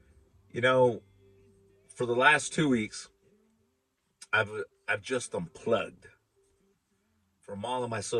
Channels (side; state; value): both; identical; correlation 1.00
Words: You know, for the last 2 weeks, I've I've just unplugged from all of my